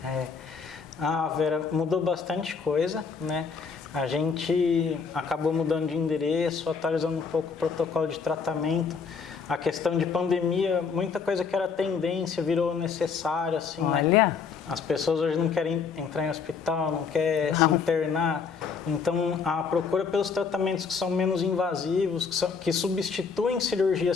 Ah, Vera, mudou bastante coisa, né? A gente acabou mudando de endereço, atualizando um pouco o protocolo de tratamento. A questão de pandemia, muita coisa que era tendência virou necessário, assim, Olha. né? As pessoas hoje não querem entrar em hospital, não querem se internar. Então, a procura pelos tratamentos que são menos invasivos, que substituem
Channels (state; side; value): quieter; right; 5.6 dB